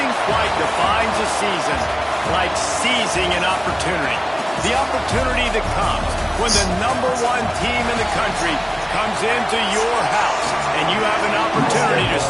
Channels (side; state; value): both; identical; correlation 1.00